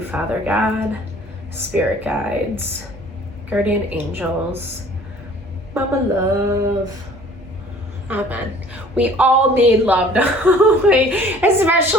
Father God, Spirit guides, guardian angels, Mama Love. Amen. We all need love,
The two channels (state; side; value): normal; both; correlation 0.52